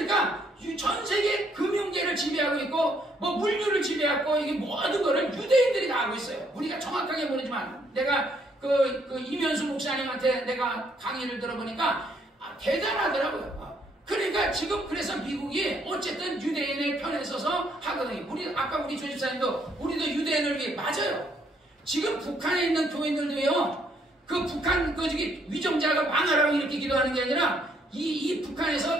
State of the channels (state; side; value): normal; both; correlation 0.69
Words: 전 세계 금융계를 지배하고 있고 물류를 지배하고 이게 모든 거를 유대인들이 다 하고 있어요. 우리가 정확하게 모르지만 내가 이면수 목사님한테 내가 강의를 들어보니까 대단하더라고요. 그러니까 지금 그래서 미국이 어쨌든 유대인의 편에 서서 하거든요. 아까 우리 조집사님도 우리도 유대인을 위해 맞아요. 지금 북한에 있는 교인들도요 그 북한 그 저기 위정자가 망하라고 이렇게 기도하는 게 아니라 이 북한에서